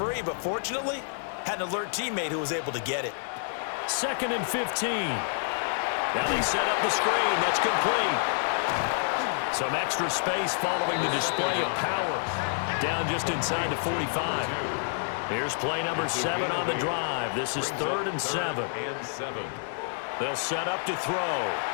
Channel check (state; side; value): silent; right; 59 dB below the other